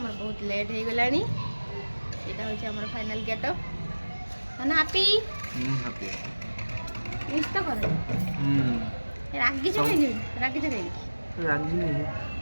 बहुत लेट हो गलानी। एटा होछि हमर फाइनल गेटअप। ना हैप्पी हैप्पी मिस तो कर रागी से खाई रागी से खाई रागी नहीं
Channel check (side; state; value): both; inverted; correlation -1.00